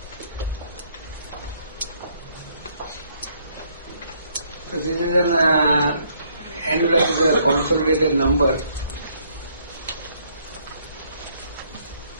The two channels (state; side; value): inverted; both; correlation -0.68